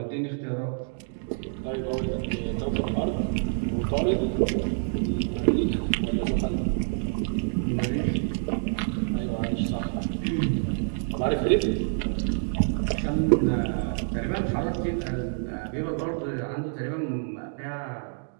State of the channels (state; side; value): silent; left; digital silence